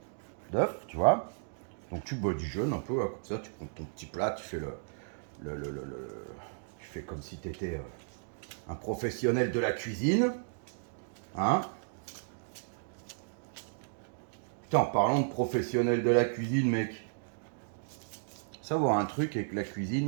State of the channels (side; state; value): left; silent; digital silence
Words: d'œuf, tu vois. Donc tu bois du jaune un peu, hein, comme ça, tu prends ton petit plat, tu fais tu fais comme si tu étais un professionnel de la cuisine. Hein. Putain, en parlant de professionnel de la cuisine, mec, savoir un truc avec la